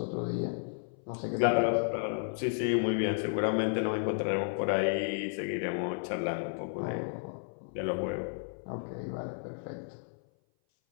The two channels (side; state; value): right; silent; 56 dB below the other